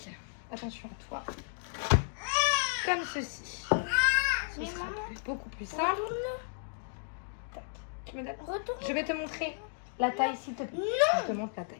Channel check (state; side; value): silent; right; digital silence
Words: Attention à toi. Comme ceci. Ce sera beaucoup plus simple. Tac. Tu me donnes. Retourne. Je vais te montrer la taille, s'il te plaît. Je te montre la taille.